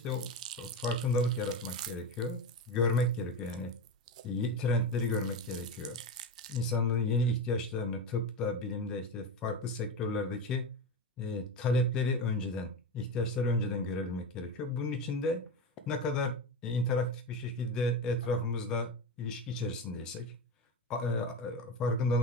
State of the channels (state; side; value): normal; both; correlation 0.20